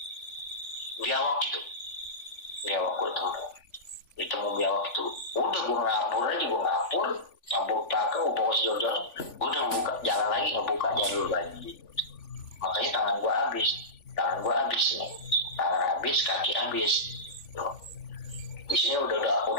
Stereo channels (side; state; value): right; late; 3.5 ms